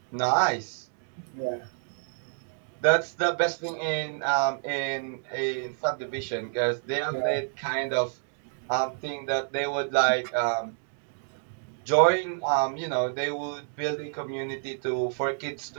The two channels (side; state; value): left; silent; digital silence